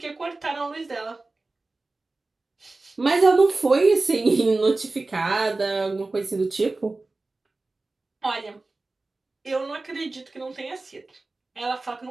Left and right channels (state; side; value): quieter; left; 3.3 dB